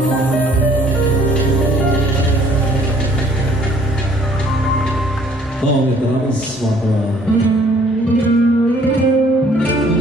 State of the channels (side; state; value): both; normal; correlation 0.59